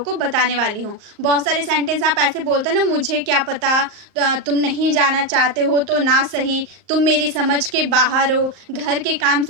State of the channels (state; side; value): late; left; 38 ms